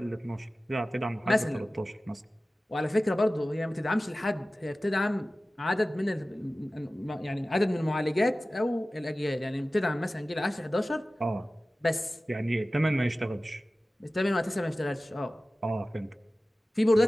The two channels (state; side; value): normal; both; correlation 0.96